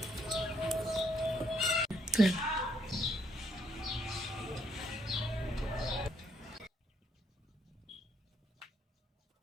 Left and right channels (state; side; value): normal; both; correlation 0.71